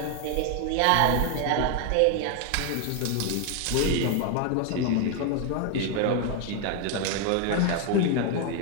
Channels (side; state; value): both; different; correlation 0.01